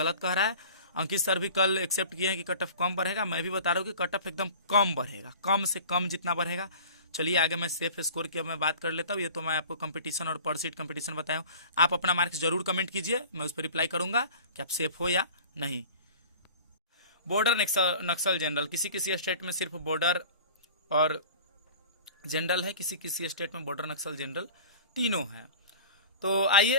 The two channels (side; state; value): both; inverted; correlation -0.42